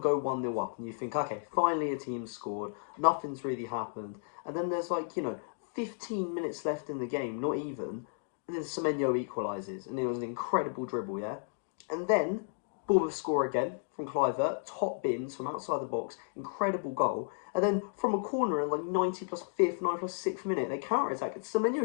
1-0 up, and you think, okay, finally a team scored, nothing's really happened, and then there's 15 minutes left in the game, not even, and then Semenyo equalises, and it was an incredible dribble, yeah? And then Bournemouth score again from Kluivert, top bins from outside the box, incredible goal. And then from a corner in 90 plus 5th, 9 plus 6th minute, they counter attack.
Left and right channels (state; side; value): silent; right; digital silence